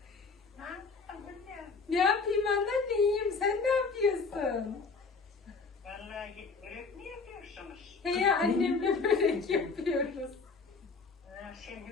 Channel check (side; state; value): right; quieter; 4.5 dB